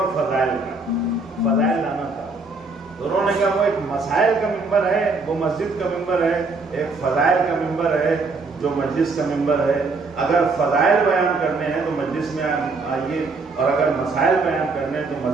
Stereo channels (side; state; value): left; quieter; 3.7 dB